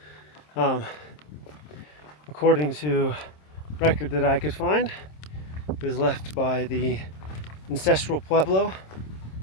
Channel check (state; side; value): late; right; 26 ms